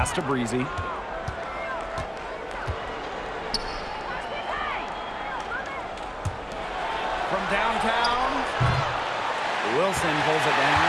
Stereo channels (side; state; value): both; identical; correlation 1.00